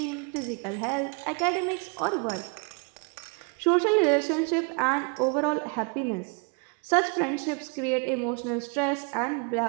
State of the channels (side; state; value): left; quieter; 34.5 dB